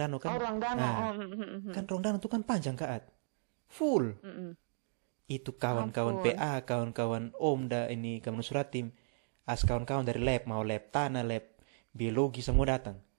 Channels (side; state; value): left; silent; digital silence